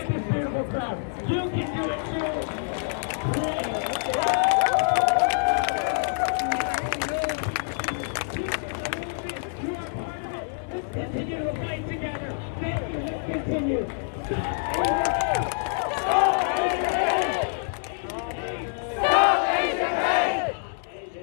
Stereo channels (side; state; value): right; silent; digital silence